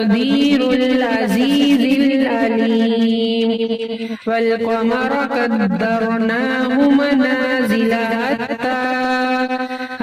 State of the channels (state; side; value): identical; both; correlation 1.00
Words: العزيز العليم والقمر قدرناه منازل